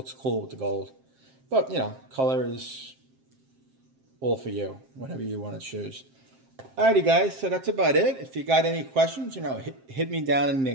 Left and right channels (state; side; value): late; left; 7.6 ms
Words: cool with the gold. But, you know, color is all for you, whatever you want to choose. Alrighty, guys, so that's about it. If you got any questions, you know, hit me down